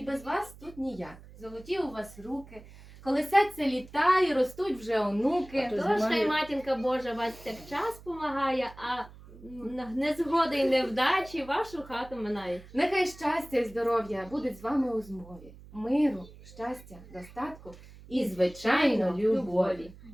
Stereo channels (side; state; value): right; noise; hum, 19 dB below the sound